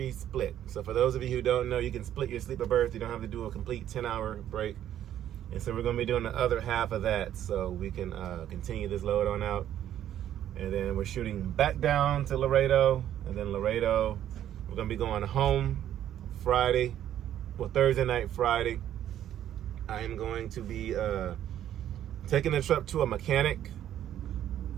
split. So for those of you who don't know, you can split your sleep or birth. You don't have to do a complete 10-hour break. And so we're going to be doing the other half of that so we can continue this load on out. And then we're shooting back down to Laredo. And then Laredo, we're gonna be going home Friday. Well, Thursday night, Friday. I am going to be taking the truck to a mechanic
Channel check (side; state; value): left; quieter; 11.2 dB